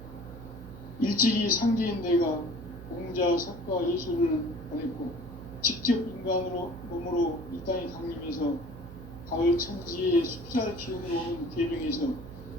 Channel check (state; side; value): noise; right; hum, 14 dB below the sound